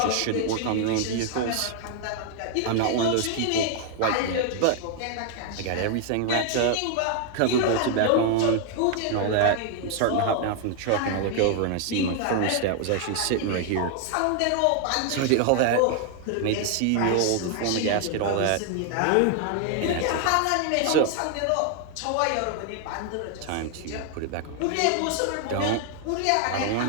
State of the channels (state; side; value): different; both; correlation 0.00